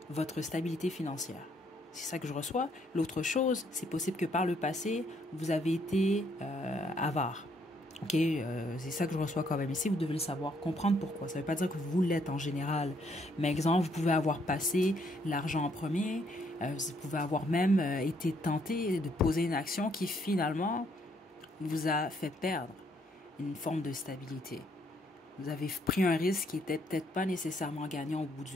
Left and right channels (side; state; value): both; normal; correlation 0.70